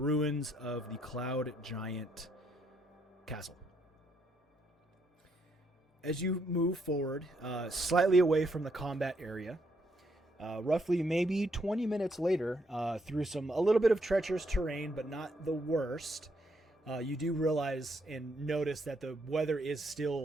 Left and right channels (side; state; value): both; normal; correlation 0.74